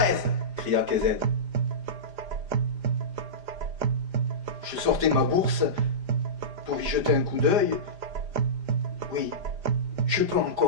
cria Kézed. Je sortais ma bourse pour y jeter un coup d'œil. Oui, je peux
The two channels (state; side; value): late; left; 4.9 ms